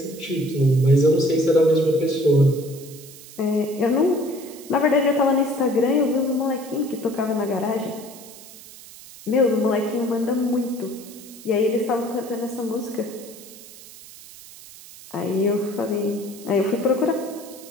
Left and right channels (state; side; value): noise; right; hiss, 18 dB below the sound